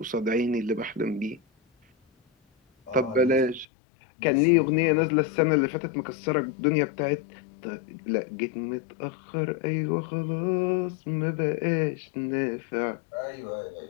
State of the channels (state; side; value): drops out; right; at 3.7 s